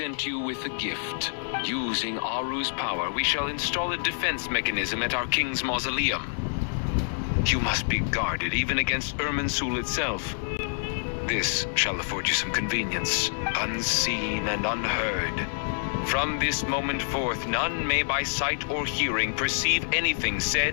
you with a gift. Using Aru's power, we shall install a defense mechanism at our king's mausoleum. You must be guarded even against Irminsul itself. This shall afford you some convenience, unseen and unheard. From this moment forth, none may by sight or hearing perceive anything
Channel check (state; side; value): silent; right; digital silence